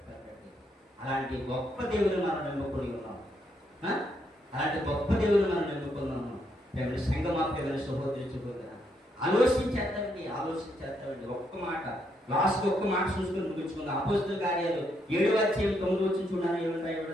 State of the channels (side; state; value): both; normal; correlation 0.76